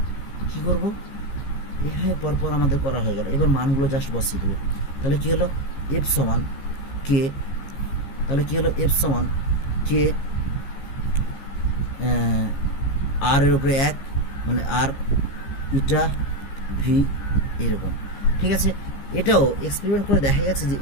কি করব, এইভাবে পরপর আমাদের করা হয়ে গেল। এবার মানগুলো জাস্ট বসিয়ে দেবো। তাহলে কি হলো, এফ সমান কে, তাহলে কি হলো এফ সমান কে আর এর উপরে 1, মানে আর ইটা ভি এরকম। ঠিক আছে, এটাও এক্সপেরিমেন্ট করে দেখা গেছে যে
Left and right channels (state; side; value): late; right; 15 ms